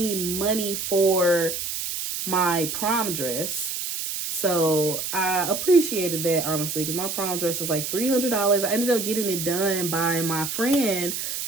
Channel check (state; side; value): noise; right; hiss, 4 dB below the sound